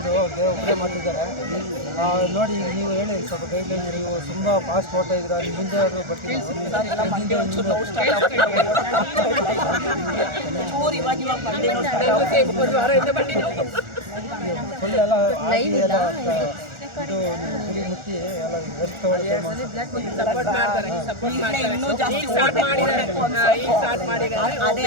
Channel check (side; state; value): left; late; 1.4 ms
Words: ಒಬ್ಬರೇ ಮಾಡ್ತಿದ್ದಾರೆ ನೋಡಿ. ನೀವು ಹೇಳಿ ಸ್ವಲ್ಪ ಗೈಡ್ಲೈನ್. ನೀವು ತುಂಬಾ ಫಾಸ್ಟ್ ಓಡ್ತಾ ಇದ್ರ, ನಿಮ್ಮ ಮುಂದೆ ಆದರೂ ಬರ್ತೀನಿ. ಒಂದು ವಾರದಿಂದ ಬನ್ನಿ ಫುಲ್ ಎಲ್ಲ ಇದು ಗುರಿ ಮುಟ್ಟಿ ಎಲ್ಲ ರೆಸ್ಟ್ ಅದೇ